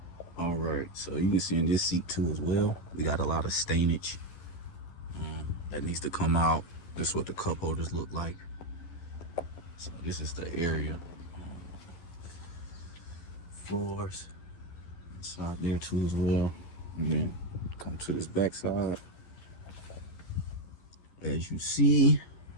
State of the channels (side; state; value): right; late; 12 ms